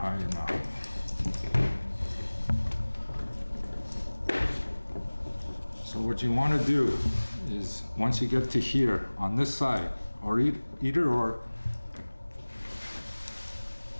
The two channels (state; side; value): inverted; both; correlation -1.00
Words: enough. So what you want to do is, once you get to here on this side, or either or,